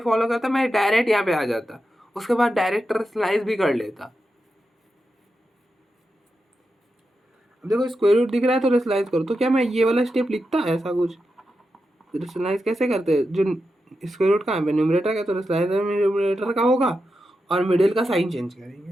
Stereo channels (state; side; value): normal; both; correlation 0.88